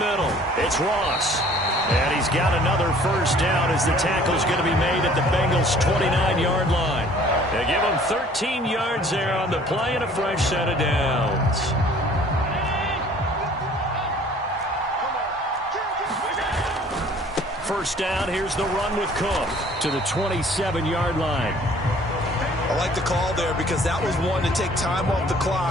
It's Ross. And he's got another first down as the tackle's going to be made at the Bengals' 29-yard line. They give him 13 yards there on the play and a fresh set of downs. First down, here's the run with Cook to the 27-yard line. I like the call there because that was one to take time off the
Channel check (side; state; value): both; normal; correlation 0.54